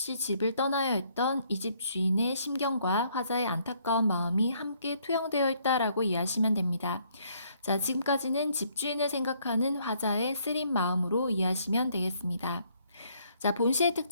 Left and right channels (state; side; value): inverted; both; correlation -0.67